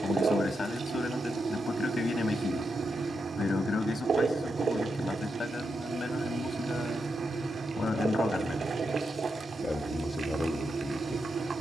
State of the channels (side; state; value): both; normal; correlation 0.85